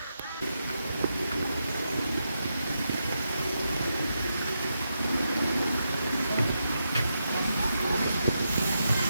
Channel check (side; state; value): both; inverted; correlation -0.85